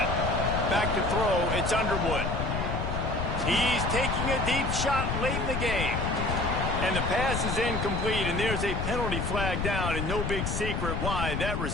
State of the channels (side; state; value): left; noise; rumble, 1 dB below the sound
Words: Back to throw, it's Underwood. He's taking a deep shot late in the game. And the pass is incomplete, and there's a penalty flag down, and no big secret why. That